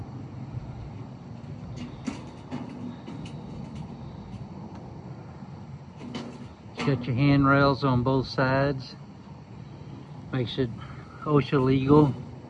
Got your handrails on both sides. Makes it OSHA legal,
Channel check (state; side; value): identical; both; correlation 1.00